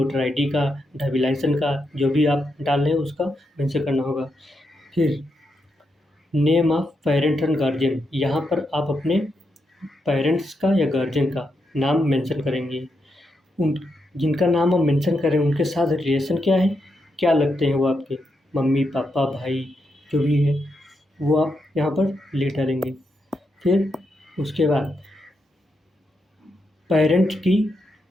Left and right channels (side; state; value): both; normal; correlation 0.83